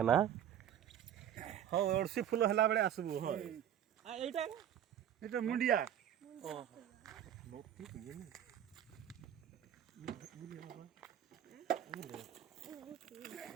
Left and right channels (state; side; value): quieter; left; 10.3 dB